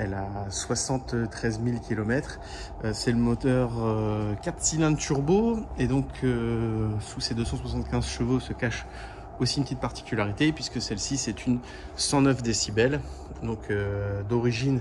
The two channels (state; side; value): identical; both; correlation 1.00